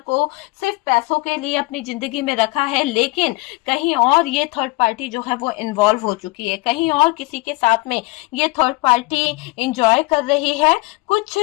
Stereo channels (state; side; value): quieter; right; 23.3 dB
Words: को सिर्फ पैसों के लिए अपनी जिंदगी में रखा है, लेकिन कहीं और ये थर्ड पार्टी जो है वो इन्वॉल्व हो चुकी है, कहीं और किसी के साथ में ये थर्ड पार्टी इंजॉय कर रही है। कुछ